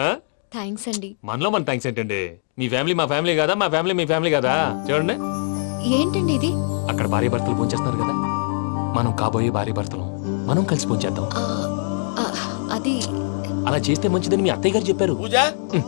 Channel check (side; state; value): right; silent; digital silence